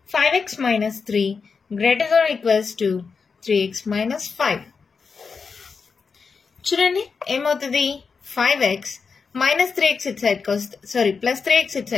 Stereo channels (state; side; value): quieter; right; 5.2 dB